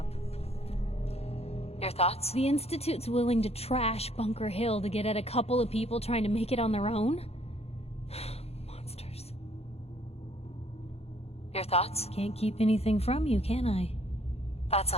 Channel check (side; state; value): right; late; 0.30 ms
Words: Your thoughts? The Institute's willing to trash Bunker Hill to get at a couple of people trying to make it on their own? Monsters. Your thoughts? Can't keep anything from you, can I? That's